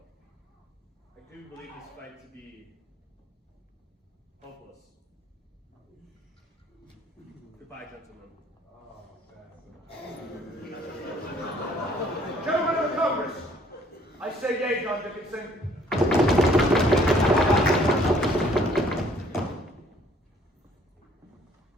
I do believe this fight to be hopeless. Goodbye, gentlemen. Gentlemen of the Congress, I say yea, John Dickinson.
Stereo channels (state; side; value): normal; both; correlation 0.60